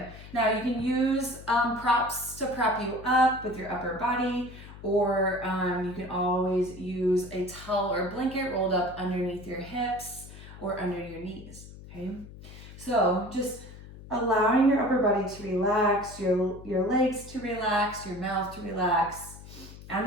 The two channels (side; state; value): left; noise; hum, 16 dB below the sound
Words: Now you can use props to prop you up with your upper body, or you can always use a towel or blanket rolled up underneath your hips or under your knees, okay? So just allowing your upper body to relax, your legs to relax, your mouth to relax. I'm